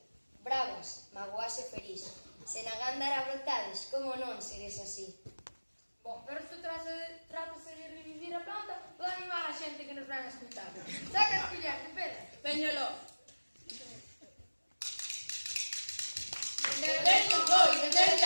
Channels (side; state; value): both; inverted; correlation -1.00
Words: bravas, magoase feliz. Se na gándara brotades, como non seres así? Bom, pero isto trátase de revivir a planta ou de animar a xente que nos van a escutar. Saca as colleres de pedra. Veñolo. Venderon os bois, venderon